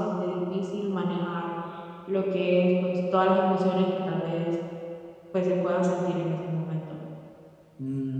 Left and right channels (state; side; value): identical; both; correlation 1.00